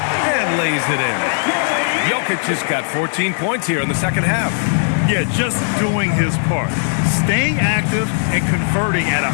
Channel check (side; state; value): right; silent; digital silence